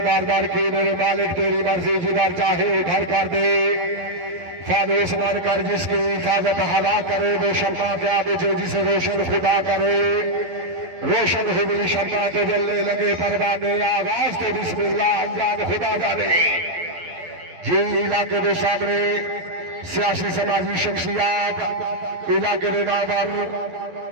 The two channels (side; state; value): left; late; 12 ms